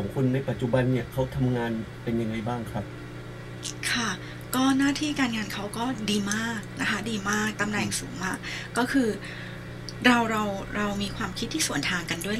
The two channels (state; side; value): identical; both; correlation 1.00